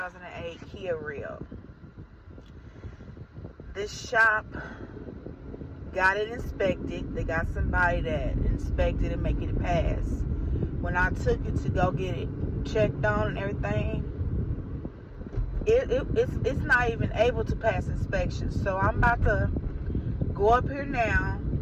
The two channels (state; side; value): identical; both; correlation 1.00